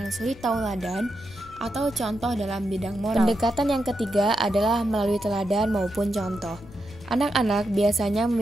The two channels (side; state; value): left; noise; rumble, 20 dB below the sound